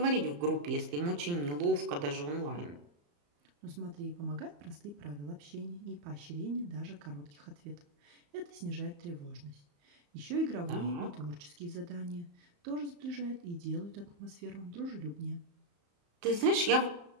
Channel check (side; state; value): left; late; 34 ms